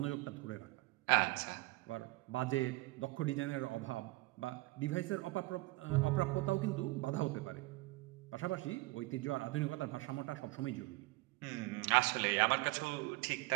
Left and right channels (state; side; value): quieter; left; 21.3 dB